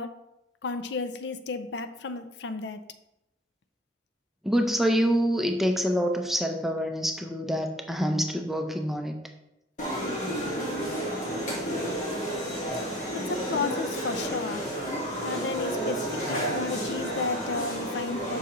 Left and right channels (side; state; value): both; normal; correlation 0.50